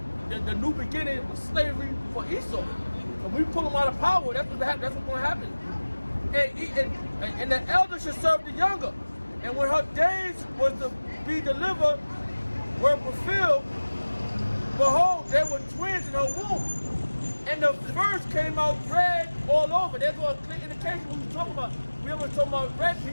the new beginning was slavery for Esau. And we pull him out of power. That's what's going to happen. And the elder should serve the younger. And when her days was to be delivered, were fulfilled, behold, there were twins in her womb. And the first came out red all over. There's a clear indication what we're talking about. We were talking about red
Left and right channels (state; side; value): inverted; both; correlation -1.00